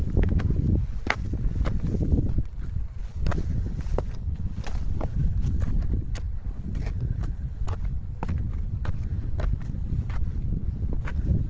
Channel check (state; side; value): identical; both; correlation 1.00